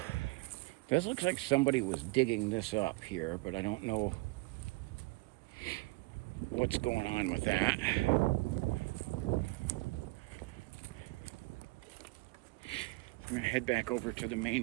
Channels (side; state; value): left; quieter; 24.3 dB